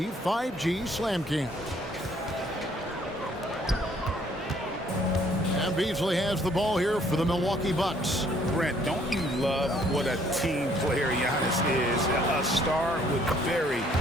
5G Slam Cam. And Beasley has the ball here for the Milwaukee Bucks. Brent, don't you love what a team player Giannis is? A star with very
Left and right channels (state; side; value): normal; both; correlation 0.63